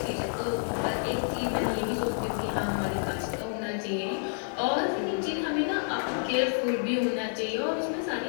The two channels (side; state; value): right; silent; digital silence